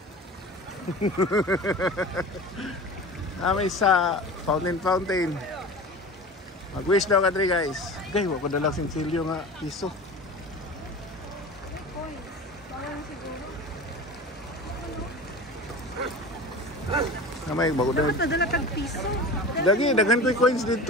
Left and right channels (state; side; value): normal; both; correlation 0.34